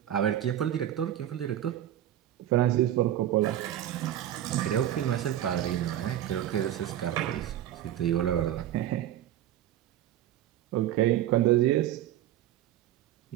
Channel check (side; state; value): left; quieter; 12.1 dB